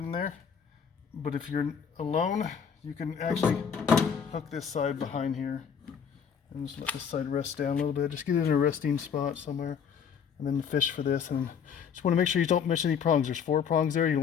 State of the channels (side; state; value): right; quieter; 7.2 dB